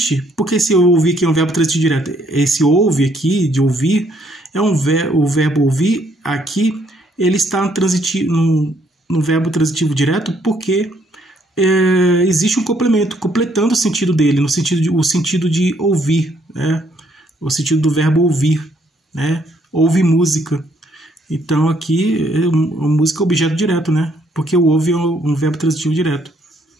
Porque esse ouvir aqui é um verbo transitivo direto. Esse ouve aqui, de ouvir, o verbo ouvir aqui, ele está no verbo transitivo direto porque existe um complemento, completando o sentido dele, o sentido de ouvir, né? O sentido do verbo ouvir, né? Ouve música. Então aqui, música é objeto direto, né? Porque o ouve é um verbo transitivo direto.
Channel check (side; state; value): both; normal; correlation 0.68